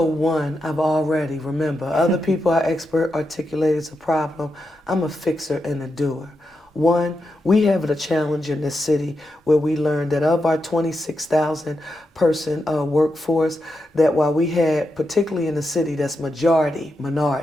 one, remember, other people are expert articulate it's a problem. I'm a fixer and a doer. One, we have a challenge in this city where we learned that of our 26,000 person workforce, that while we had, particularly in the city that's minority,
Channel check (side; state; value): both; normal; correlation 0.86